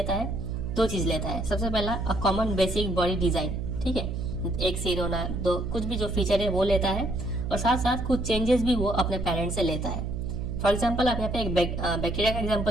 है, दो चीज लेता है। सबसे पहला a common basic body design, ठीक है, एक सिर होना, दो कुछ भी जो फीचर है वो लेता है, और साथ साथ कुछ चेंजेस भी वो अपने पेरेंट से लेता है। फॉर एग्जाम्पल, आप यहाँ पे एक बैक्टीरिया का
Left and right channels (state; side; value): noise; right; hum, 3 dB below the sound